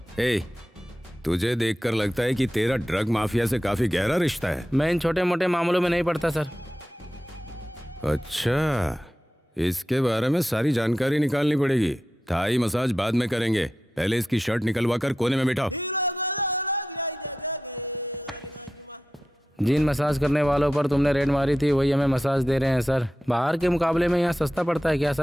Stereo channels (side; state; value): both; normal; correlation 0.91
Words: ए, तुझे देखकर लगता है कि तेरा ड्रग माफिया से काफी गहरा रिश्ता है। मैं इन छोटे मोटे मामलों में नहीं पड़ता सर। अच्छा, इसके बारे में सारी जानकारी निकालनी पड़ेगी। थाई मसाज बाद में करेंगे, पहले इसकी शर्ट निकलवा कर कोने में बैठाओ। जिन मसाज करने वालों पर तुमने रेड मारी थी वही हमें मसाज दे रहे हैं सर। बाहर के मुकाबले में यहाँ सस्ता पड़ता है क्या